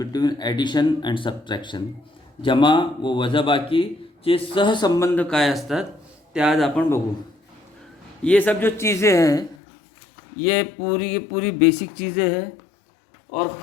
addition and subtraction. जमा व वजाबाकी चे सहसंबंध काय असतात ते आज आपण बघू। ये सब जो चीज़ें हैं ये पूरी बेसिक चीज़ें हैं, और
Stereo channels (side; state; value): right; drops out; at 9.6 s